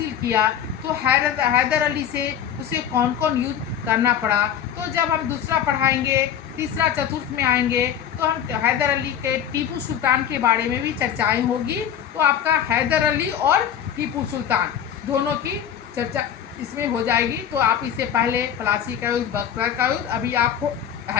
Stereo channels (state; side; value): quieter; right; 9.3 dB